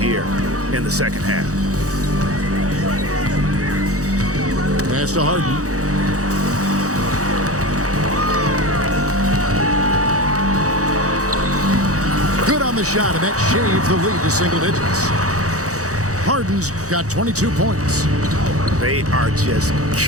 in the 2nd half. Pass to Harden. Good on the shot, and that shaves the lead to single digits. Harden's got 22 points. They are just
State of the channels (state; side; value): late; left; 0.66 ms